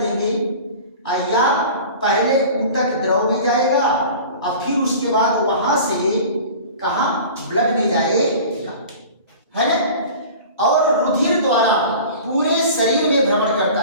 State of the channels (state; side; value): inverted; both; correlation -0.40